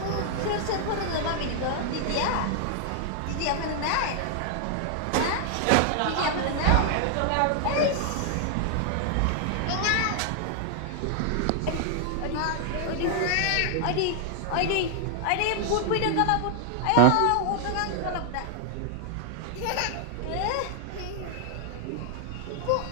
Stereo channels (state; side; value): different; both; correlation 0.00